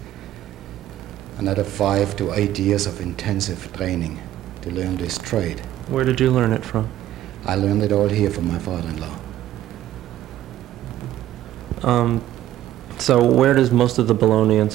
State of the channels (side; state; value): left; quieter; 13.3 dB